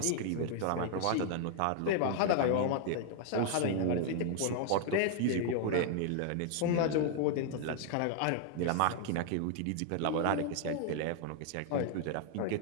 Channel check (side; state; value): both; different; correlation 0.00